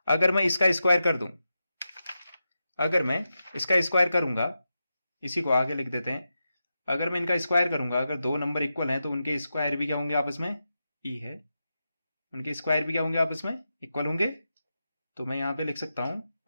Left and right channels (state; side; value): inverted; both; correlation -0.89